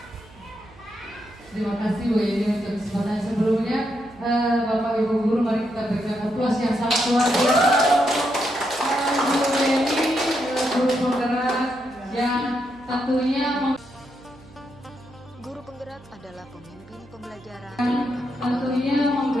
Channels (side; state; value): right; noise; hum, 24 dB below the sound